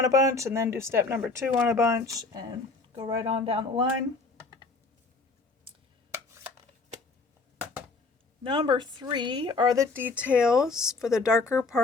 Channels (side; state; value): right; quieter; 3.8 dB